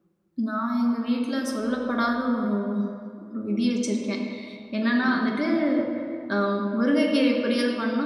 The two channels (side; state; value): both; identical; correlation 1.00